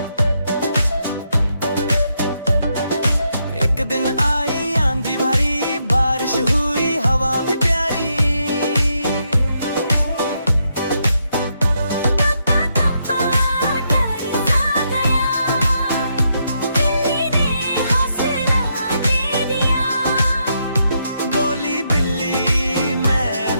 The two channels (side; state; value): both; inverted; correlation -0.79